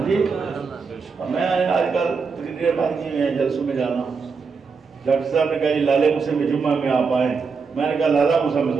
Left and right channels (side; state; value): left; quieter; 5.2 dB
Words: جی. میں آج کل تقریریں بند کی ہوئی ہیں جلسوں میں جانا. ڈاکٹر صاحب نے کہا جی لالے موسیٰ میں جمعہ میں آپ آئیں. میں نے کہا لالا موسیٰ میں